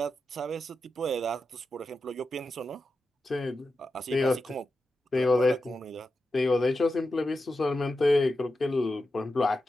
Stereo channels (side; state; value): both; normal; correlation 0.90